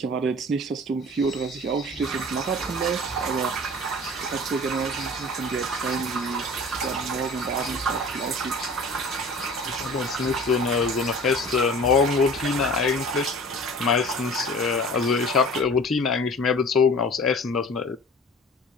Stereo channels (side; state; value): both; normal; correlation 0.43